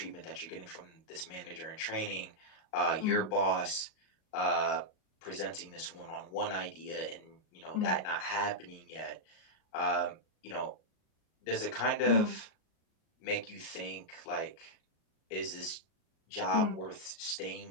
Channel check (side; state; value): right; late; 38 ms